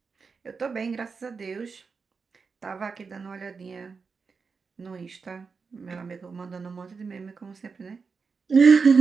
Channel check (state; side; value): quieter; left; 5.1 dB